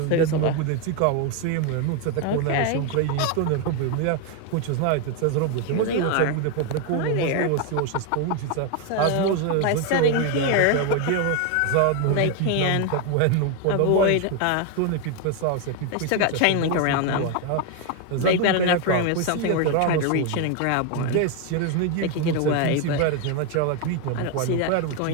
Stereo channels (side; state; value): both; different; correlation 0.01